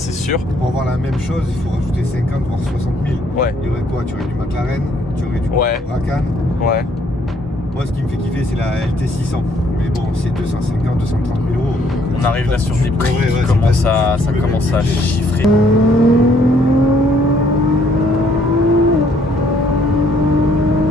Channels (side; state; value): both; normal; correlation 0.65